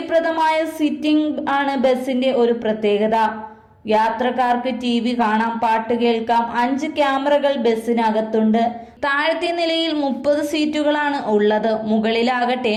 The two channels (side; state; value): both; identical; correlation 1.00